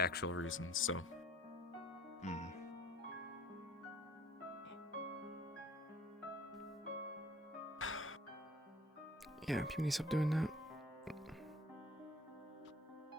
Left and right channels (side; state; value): both; normal; correlation 0.54